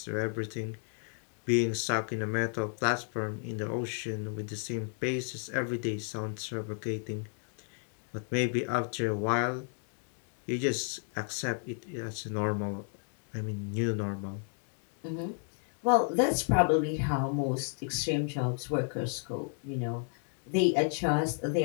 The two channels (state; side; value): silent; right; 56 dB below the other